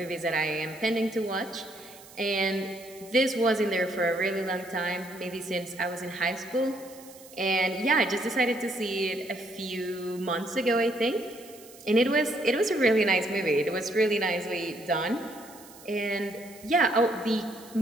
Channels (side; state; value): right; noise; hiss, 21 dB below the sound